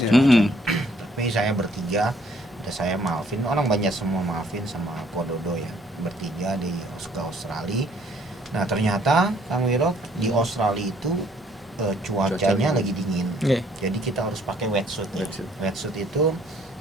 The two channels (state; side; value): normal; both; correlation 0.63